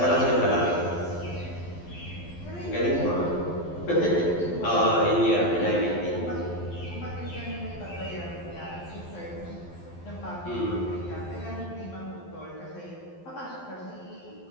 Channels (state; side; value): late; right; 12 ms